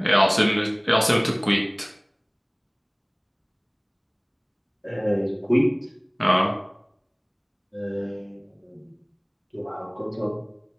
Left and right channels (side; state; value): both; identical; correlation 1.00